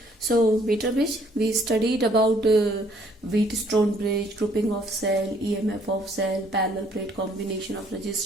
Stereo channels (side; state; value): both; normal; correlation 0.63